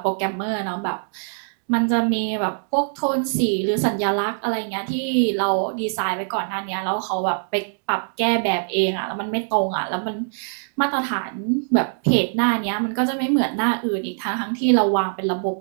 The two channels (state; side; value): silent; left; digital silence